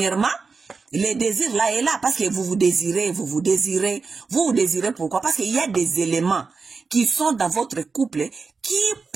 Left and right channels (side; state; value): left; quieter; 4.7 dB